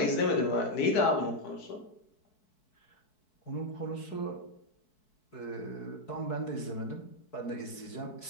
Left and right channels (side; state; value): right; late; 4.6 ms